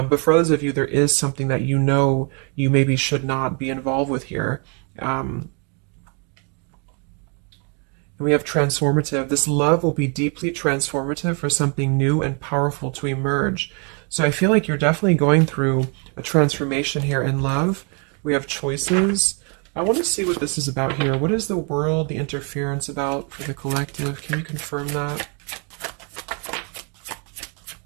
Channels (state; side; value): quieter; left; 36.5 dB